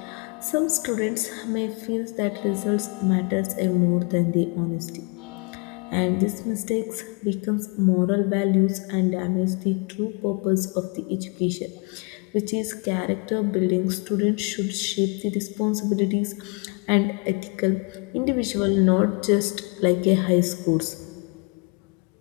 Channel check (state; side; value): quieter; right; 32.5 dB